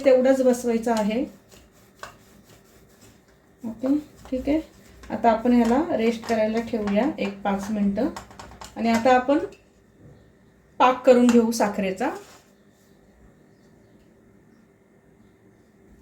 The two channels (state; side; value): identical; both; correlation 1.00